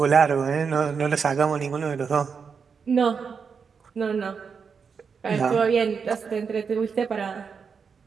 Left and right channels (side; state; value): left; quieter; 6.0 dB